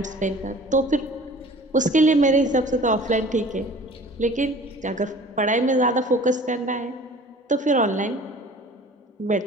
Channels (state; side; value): normal; both; correlation 0.46